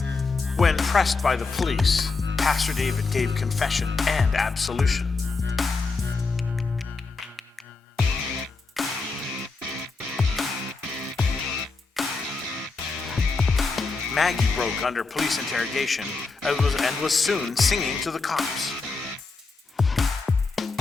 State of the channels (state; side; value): quieter; right; 4.1 dB